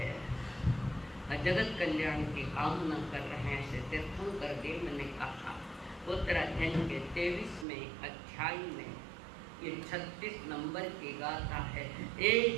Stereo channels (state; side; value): drops out; left; at 7.7 s